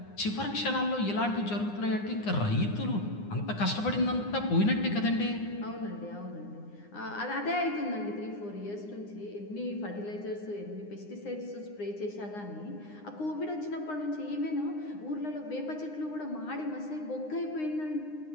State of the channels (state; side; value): late; right; 9.8 ms